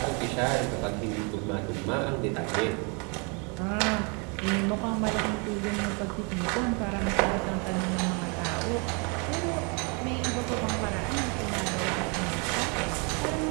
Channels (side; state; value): left; quieter; 33.6 dB